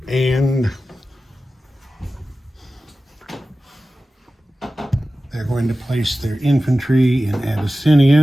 And they're going to place their infantry in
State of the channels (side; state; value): both; normal; correlation 0.95